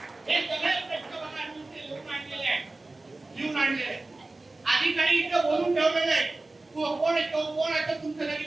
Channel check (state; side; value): quieter; left; 3.1 dB